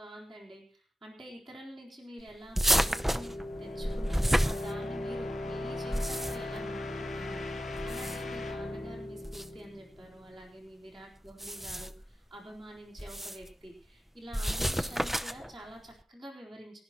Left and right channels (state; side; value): normal; both; correlation 0.90